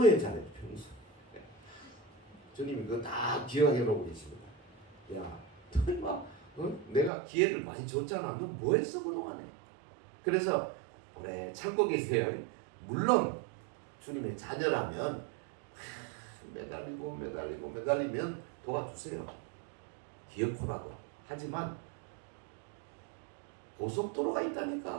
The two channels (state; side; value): drops out; left; at 7.1 s